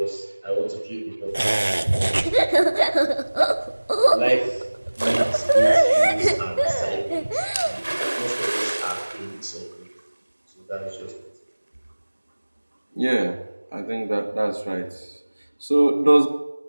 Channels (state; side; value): inverted; both; correlation -1.00